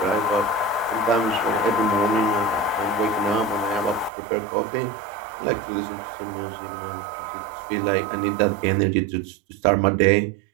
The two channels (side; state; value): left; drops out; at 4.1 s